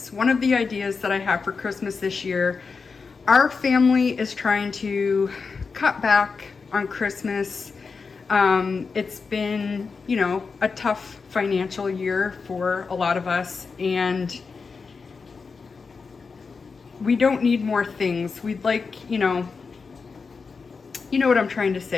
One of the ideas that I have for Christmas this year, our family is trying to cut back on Christmas. It's been, you know, a tough financial year for a lot of us, and we don't need more things. We'd like, you know what I'm trying to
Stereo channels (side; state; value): right; quieter; 4.9 dB